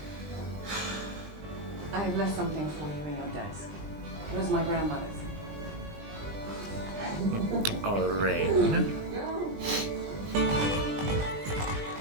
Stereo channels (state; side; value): late; left; 20 ms